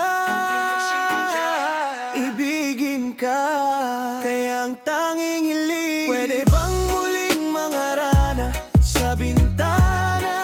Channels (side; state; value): both; identical; correlation 1.00